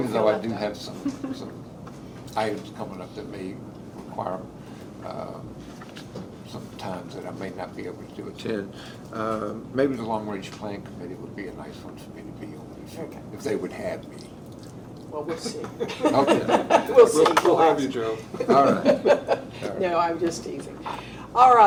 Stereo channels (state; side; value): identical; both; correlation 1.00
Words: feel though I left do out. have some items coming up that may require some times that I may not be able to attend, maybe the Long Range Plan Committee would be a nice one for me to be on, if they would have me. Well, we'll see. Okay. We'll see. We'll have you, Joe. All right. No, I'm just teasing. All